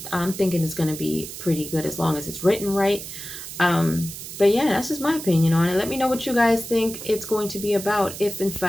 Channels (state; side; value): noise; right; hiss, 10 dB below the sound